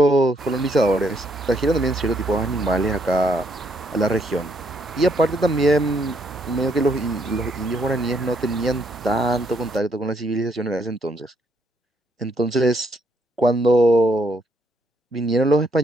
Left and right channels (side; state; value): both; normal; correlation 0.72